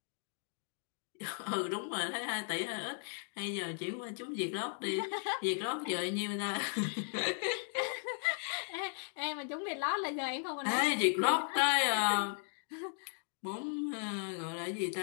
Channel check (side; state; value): right; silent; 53 dB below the other